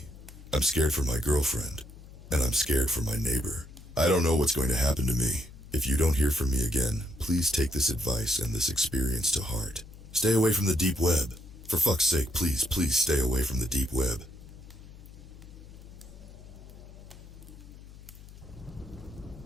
I'm scared for my girlfriend, and I'm scared for my neighbor. I don't know what's going to happen to me. If you don't hear from me again, please take this advice and this experience to heart. Stay away from the deep web. For fuck's sake, please, please stay away from the deep web.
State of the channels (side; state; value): left; noise; hum, 18 dB below the sound